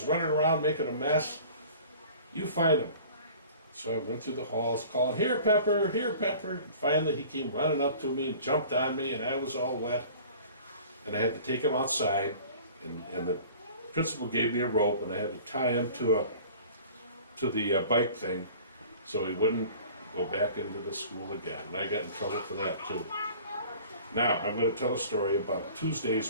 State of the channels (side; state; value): both; inverted; correlation -0.46